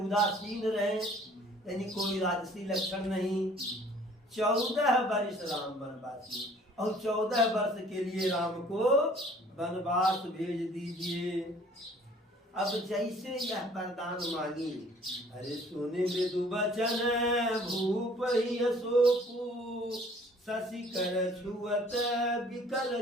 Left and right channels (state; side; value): normal; both; correlation 0.54